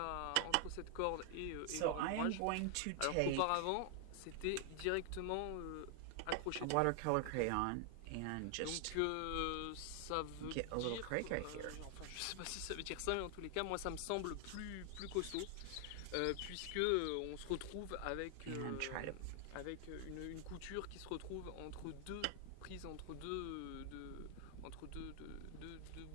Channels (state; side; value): different; both; correlation 0.00